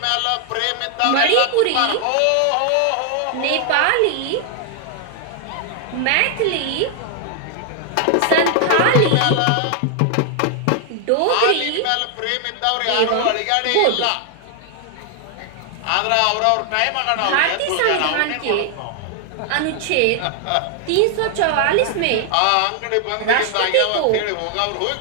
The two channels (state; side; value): different; both; correlation 0.00